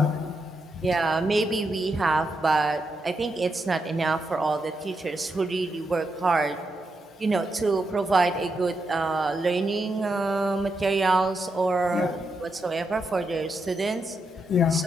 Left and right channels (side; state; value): both; normal; correlation 0.84